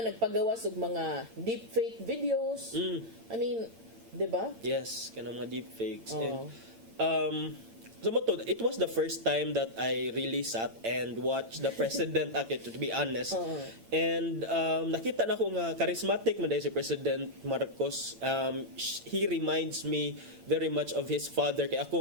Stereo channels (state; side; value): late; left; 8.8 ms